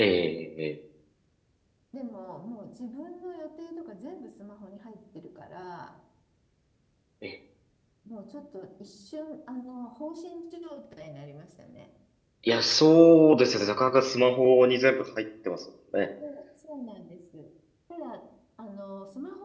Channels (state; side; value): identical; both; correlation 1.00